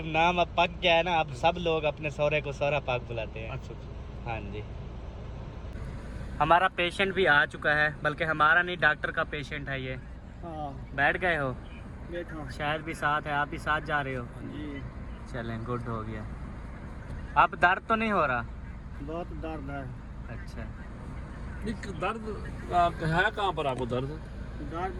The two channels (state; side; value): identical; both; correlation 1.00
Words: नाम अब पक गया है ना, अब सब लोग अपने सौरे को सौरा पाक बुलाते हैं। अच्छा अच्छा। हाँ जी हमारा पेशेंट भी आ चुका है, बल्कि हमारा नहीं डॉक्टर का पेशेंट है ये। बैठ गए हो? बैठो शायद भी साथ है, आप भी साथ जा रहे हो? जी। चलें गुड हो गया। अब दर्द तो नहीं हो रहा? बहुत दर्द है। अच्छा दर्द है कहाँ पर आपको दर्द?